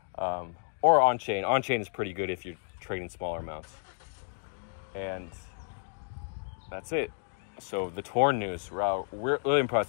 Or on-chain. On-chain is pretty good if you're trading smaller amounts. And that's it. So the Torn news, wow, we're really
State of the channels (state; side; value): silent; right; digital silence